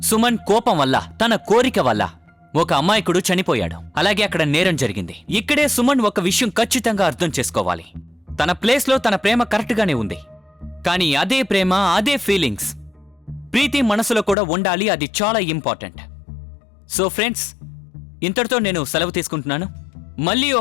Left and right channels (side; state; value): right; drops out; at 14.4 s